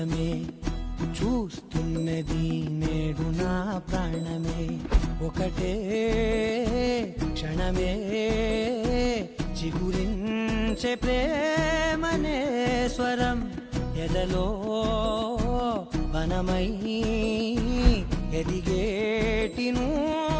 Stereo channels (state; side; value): identical; both; correlation 1.00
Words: చూస్తున్నది నేడు నా ప్రాణమే. ఒకటే క్షణమే చిగురించే ప్రేమనే స్వరం ఎదలో వనమై ఎదిగేటి